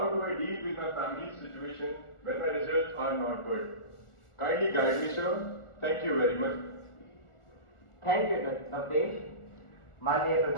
do I deal with my family's situation when my results are not good? Kindly guide me, sir. Thank you very much. Thank you Navdesh. माननीय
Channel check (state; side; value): late; right; 1.4 ms